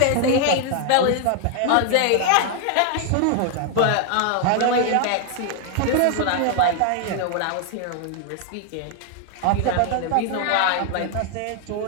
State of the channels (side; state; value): both; different; correlation 0.00